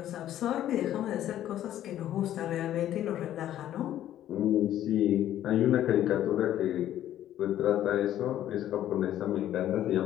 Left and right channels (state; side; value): quieter; right; 12.1 dB